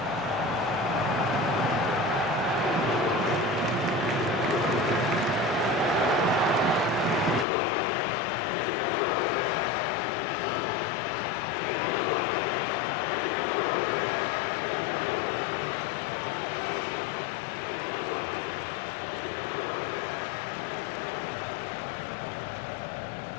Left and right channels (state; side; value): drops out; right; at 7.5 s